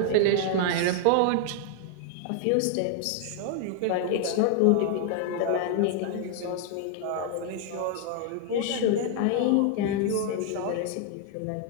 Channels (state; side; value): different; both; correlation 0.00